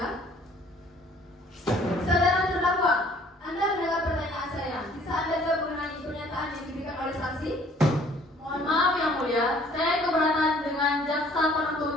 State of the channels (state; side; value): normal; both; correlation 0.57